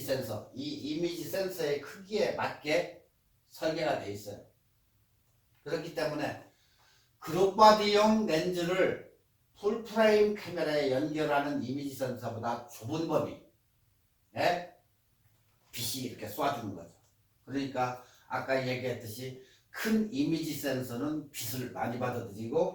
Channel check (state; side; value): identical; both; correlation 1.00